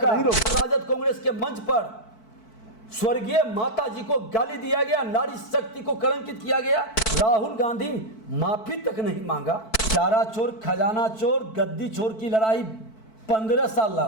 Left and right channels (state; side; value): late; right; 4.6 ms